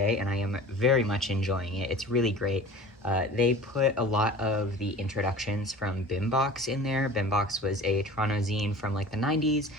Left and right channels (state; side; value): normal; both; correlation 0.41